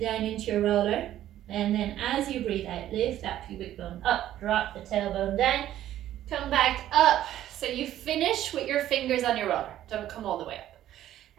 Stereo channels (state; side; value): quieter; left; 12.6 dB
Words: down into your roller. And then as you breathe out, lift that pubic bone up, drop the tailbone down, come back up. So you finish with your fingers on your roller. Don't come all the way